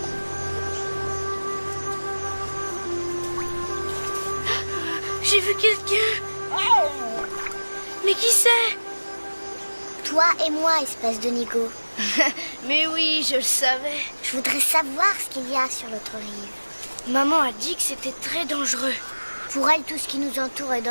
J'ai vu quelqu'un. Mais qui c'est? Toi et moi, espèce de nigo. Mais oui, je le savais. Je voudrais savoir ce qu'il y a sur l'autre rive. Maman a dit que c'était très dangereux. Pour elle, tout ce qui nous entoure est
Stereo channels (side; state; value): both; inverted; correlation -1.00